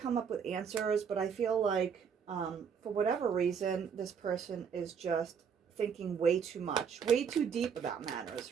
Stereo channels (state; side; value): quieter; left; 6.9 dB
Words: up with answers, but I feel like for whatever reason, this person is just thinking way too much, way too deep about